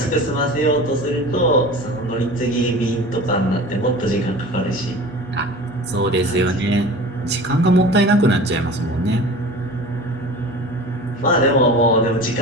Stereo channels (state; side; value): normal; both; correlation 0.38